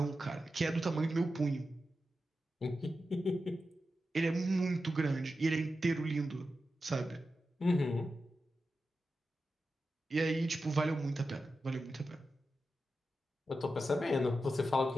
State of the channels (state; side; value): normal; both; correlation 0.91